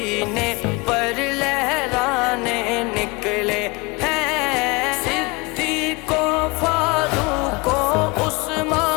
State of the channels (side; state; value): right; quieter; 26.1 dB